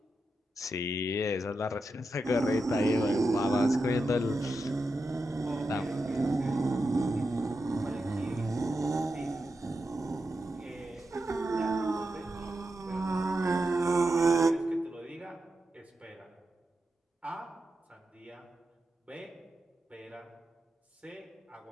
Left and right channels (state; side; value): normal; both; correlation 0.88